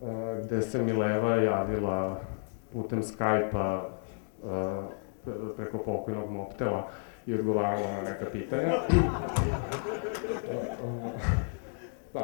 gde se Mileva javila putem Skype-a preko pokojnog Mobtela i odgovarala na neka pitanja.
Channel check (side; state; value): right; silent; digital silence